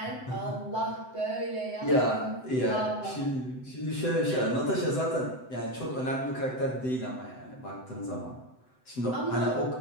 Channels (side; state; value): right; late; 7.9 ms